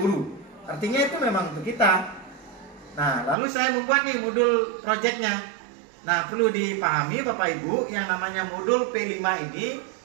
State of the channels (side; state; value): left; drops out; at 3.4 s